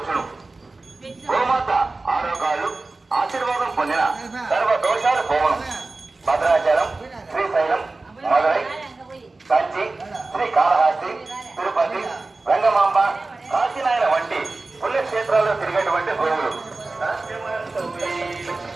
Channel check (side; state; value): left; quieter; 3.4 dB